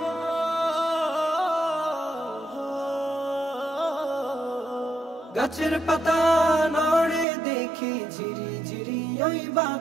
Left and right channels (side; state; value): left; drops out; at 7.2 s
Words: গাছের পাতা নড়ে দেখি ঝিরি ঝিরি ওই